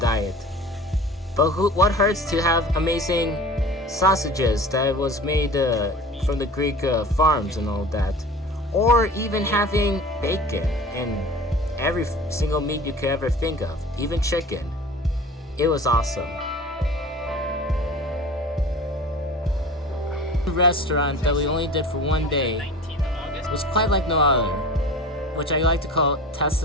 But what hurts to have amazing sausages that was made from the Greek farms and all that, or even having bacon and every single meat you could ever think of, even chicken. It was awesome. The restaurant that we only did for one day was quite like no other, which I like to call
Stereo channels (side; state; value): both; normal; correlation 0.39